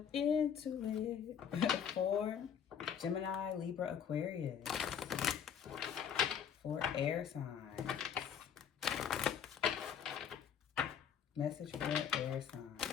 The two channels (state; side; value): quieter; right; 8.0 dB